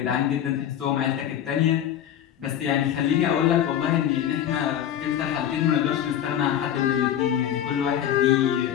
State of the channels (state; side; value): quieter; right; 10.3 dB